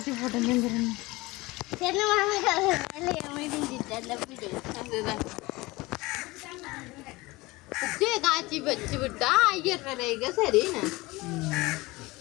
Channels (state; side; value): quieter; right; 21.6 dB